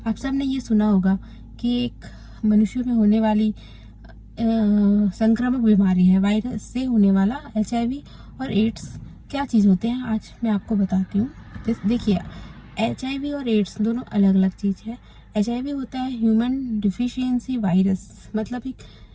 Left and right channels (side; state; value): both; identical; correlation 1.00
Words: आप सब ने ये सुना होगा कि एक मनुष्य में होने वाली संक्रामक बीमारी है। वायरस से होने वाला HIV और एड्स क्या चीज़ होते हैं, आज मैं आपको बताती हूँ। देखिए, HIV और एड्स दोनों अलग अलग चीज़ है। HIV होता है ह्यूमन डिफिशियंसी वायरस, मतलब